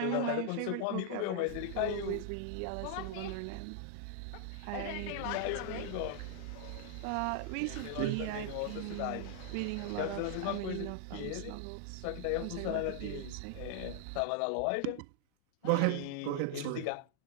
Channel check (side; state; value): both; different; correlation -0.01